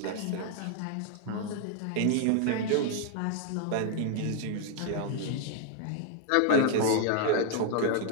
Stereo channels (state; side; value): different; both; correlation 0.00